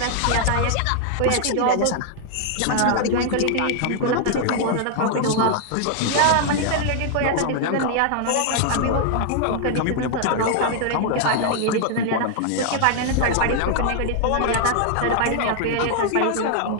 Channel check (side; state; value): both; different; correlation 0.00